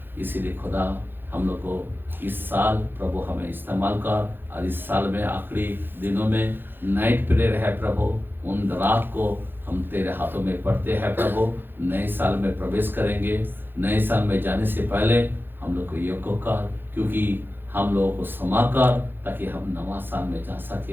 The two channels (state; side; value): late; left; 0.099 ms